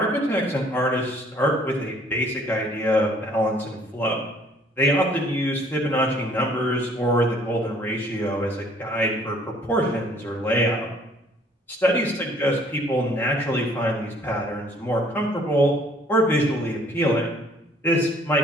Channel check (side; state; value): both; normal; correlation 0.58